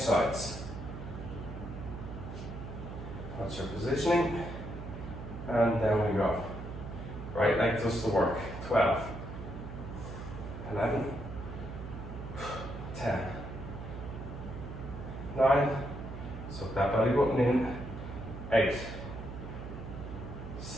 sides. That's your positioning. And down we go. Right leg does the work. 12, 11, 10, 9, suck that belly button in, 8,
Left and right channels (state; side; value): noise; right; hum, 9 dB below the sound